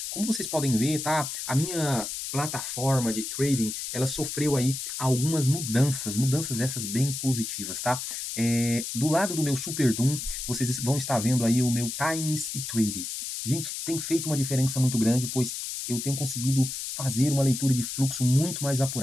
como vocês podem ver, tá? A minha plataforma de trading, ela sofreu aí algumas mudanças essas bem positivas, tá? Do lado do meu Super Doom, vocês vão estar vendo aí o meu Times e Trading. Gente, tem feito uma diferença muito grande, pois eu tenho conseguido fazer uma leitura de fluxo muito mais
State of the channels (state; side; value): noise; left; hiss, 5 dB below the sound